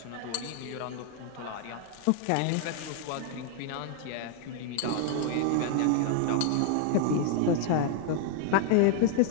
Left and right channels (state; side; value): different; both; correlation -0.01